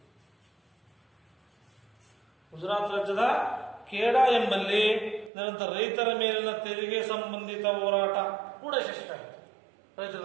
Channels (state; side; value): drops out; left; at 5.3 s